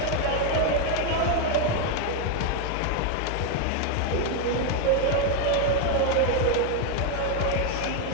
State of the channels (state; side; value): different; both; correlation 0.01